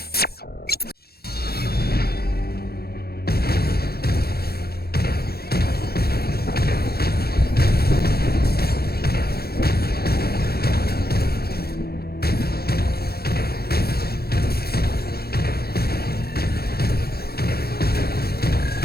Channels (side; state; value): right; late; 0.46 ms